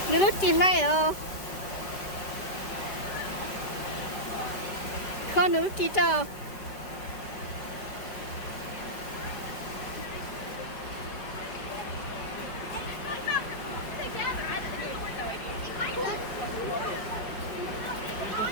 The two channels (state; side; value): late; right; 5.1 ms